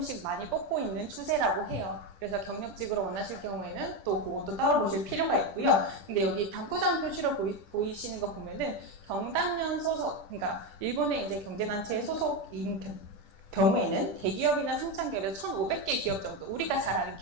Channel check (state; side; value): late; right; 10 ms